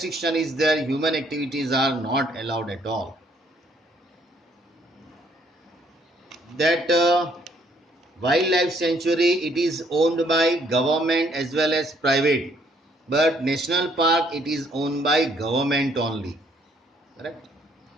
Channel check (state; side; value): normal; both; correlation 0.66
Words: is there. Human activities are not allowed at all. That wildlife sanctuary, it is owned by government as well as private, but national park, it is owned by government only. Correct?